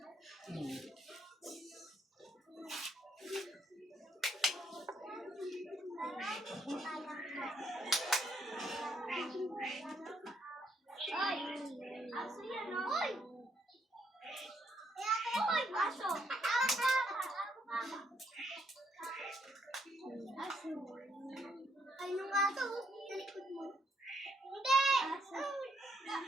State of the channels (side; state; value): both; normal; correlation 0.73